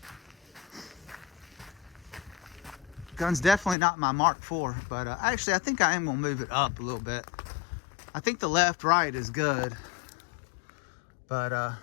Gun's definitely not my Mark IV, but actually I think I am gonna move it up a little bit. I think the left-right is good, but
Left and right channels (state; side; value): drops out; right; at 3.8 s